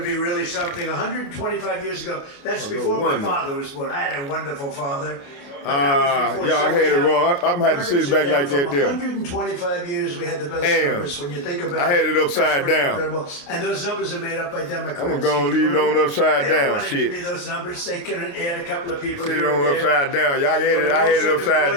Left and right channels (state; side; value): late; right; 29 ms